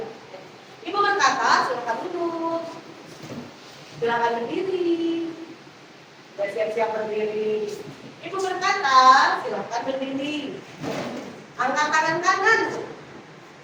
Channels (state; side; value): identical; both; correlation 1.00